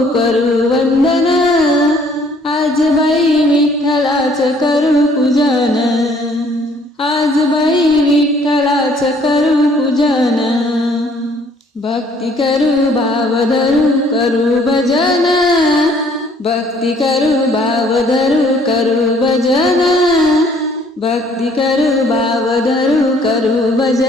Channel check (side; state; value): both; normal; correlation 0.60